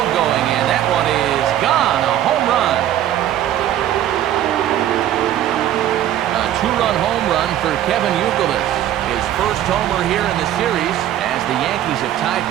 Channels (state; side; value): quieter; left; 11.9 dB